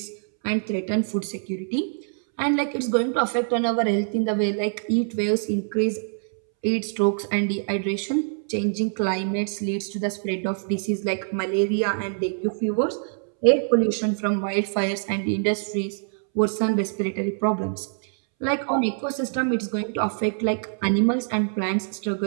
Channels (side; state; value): left; silent; 62 dB below the other